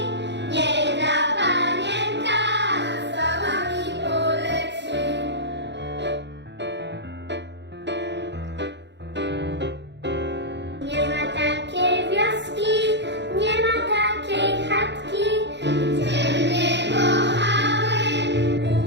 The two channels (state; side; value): late; left; 0.51 ms